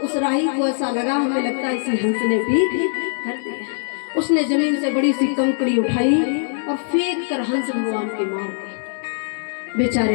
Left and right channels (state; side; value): silent; right; 65 dB below the other